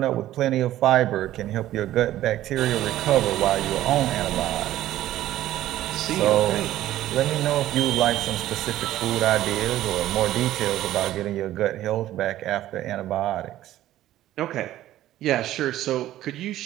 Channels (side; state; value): left; quieter; 13.9 dB